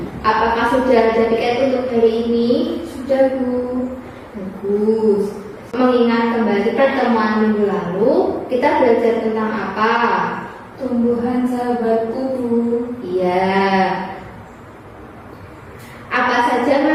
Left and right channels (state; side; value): identical; both; correlation 1.00